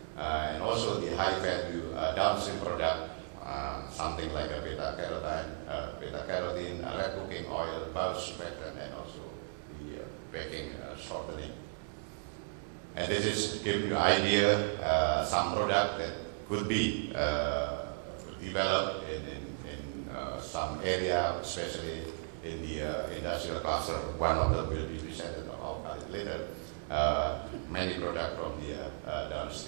and also the high value downstream product, something like a beta-carotene, red cooking oil, bulk surfactant, and also the baking shortening. And this is to give you an idea, some product that could be developed in some area, especially in the industrial cluster. One of them will be presented about later. Many products from the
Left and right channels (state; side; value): silent; left; digital silence